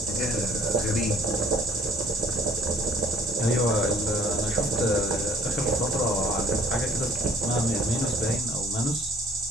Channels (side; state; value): both; normal; correlation 0.54